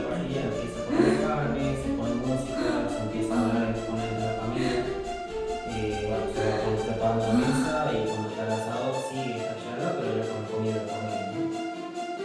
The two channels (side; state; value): both; identical; correlation 1.00